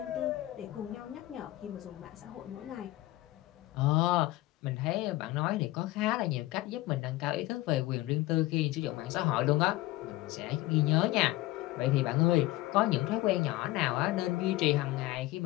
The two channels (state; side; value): quieter; right; 17.5 dB